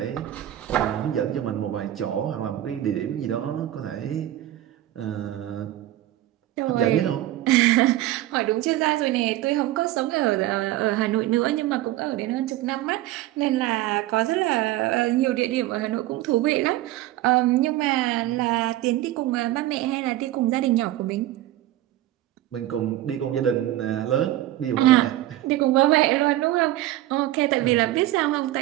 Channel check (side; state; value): left; quieter; 14.6 dB